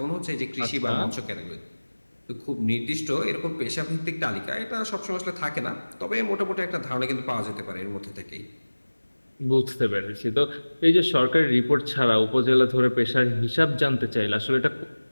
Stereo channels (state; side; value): inverted; both; correlation -1.00